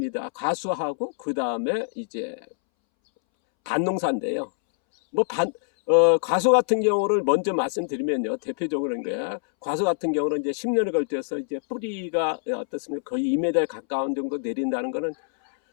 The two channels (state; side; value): silent; right; 62 dB below the other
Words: 과수하고 그 다음에 이제 밭농사인데요. 뭐 과수 같은 경우를 먼저 말씀드리면요. 대표적으로는 거야. 과수 같은 경우는 이제 10년을 걸쳐서 이제 뿌리가 어떻습니까? 거의 2m에 가까운 정도 내린다는 거는